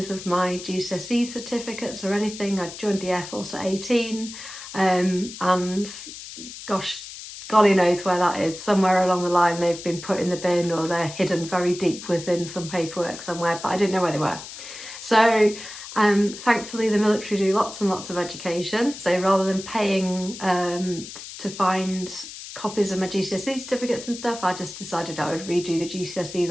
of my GCSE certificates or anything. I joined the Air Force at 18 and gosh, golly knows where that is. Somewhere along the line they've been put in the bin or they're hidden very deep within some paperwork somewhere, but I didn't know where they were. So thankfully the military do lots and lots of education. So rather than paying to find copies of my GCSE certificates and stuff, I just decided I would redo the GCSEs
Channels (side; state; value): left; noise; hiss, 12 dB below the sound